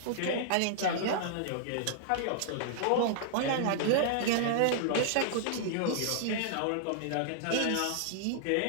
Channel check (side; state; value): both; different; correlation -0.01